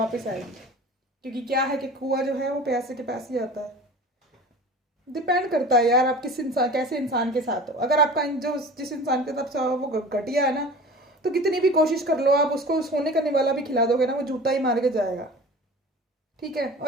आएगी, क्योंकि क्या है कि कुआं जो है वो पैसे के पास ही आता है। डिपेंड करता है यार आप किस इंसान, कैसे इंसान के साथ हो। अगर आपका जो जिस इंसान के साथ वो घटिया है ना, तो कितनी भी कोशिश कर लो आप, उसको सोने का निवाला भी खिला दोगे ना, वो जूता ही मार के जाएगा। ठीक है,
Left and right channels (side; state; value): both; normal; correlation 0.39